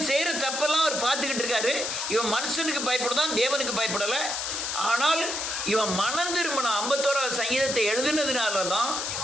செய்கிற தப்பெல்லாம் அவர் பார்த்துக்கிட்டு இருக்காரு. இவன் மனுஷனுக்கு பயப்படுதான், தேவனுக்கு பயப்படலை. ஆனால் இவன் மனம் திரும்பின 51வது சங்கீதத்தை எழுதினதுனால தான்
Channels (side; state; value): left; noise; hiss, 2 dB below the sound